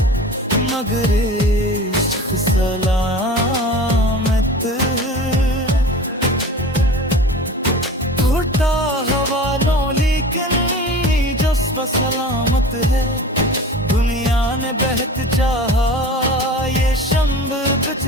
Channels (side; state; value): both; normal; correlation 0.37